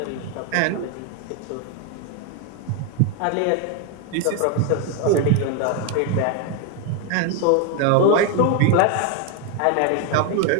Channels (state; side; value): different; both; correlation 0.01